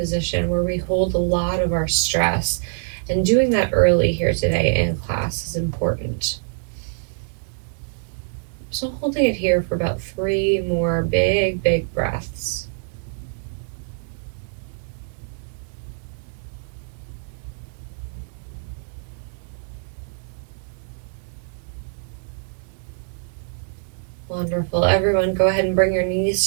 where we hold a lot of our stress. And doing that early here today in class is important. So holding it here for about 3 more big breaths. Wonderful. Everyone, go ahead and bring your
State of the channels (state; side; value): silent; left; digital silence